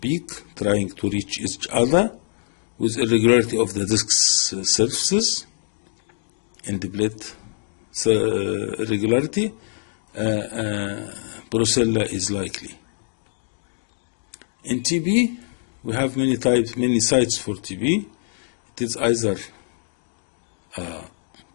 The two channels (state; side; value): silent; right; digital silence